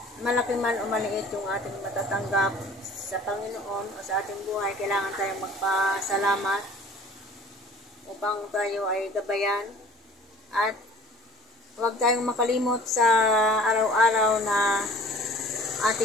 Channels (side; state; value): both; normal; correlation 0.48